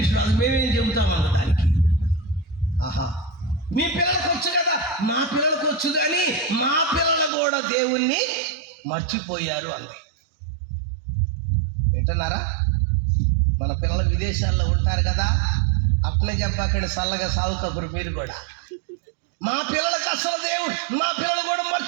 రాదు, మేమేం చెబుతామన్న దానికి. ఆహా, మీ పిల్లలకు వచ్చు కదా, మా పిల్లలకు వచ్చు, కానీ మా పిల్లలు కూడా దేవుణ్ణి మర్చిపోయారు అంది. వింటున్నారా? మన పిల్లలు విదేశాల్లో ఉంటారు కదా, అట్లే చెప్పాకండి, చల్లగా సాగుకప్పుడు మీరు కూడా. మా పిల్లలకు అసలు దేవుడు, మా పిల్లలు కూడా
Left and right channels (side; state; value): left; drops out; at 7.3 s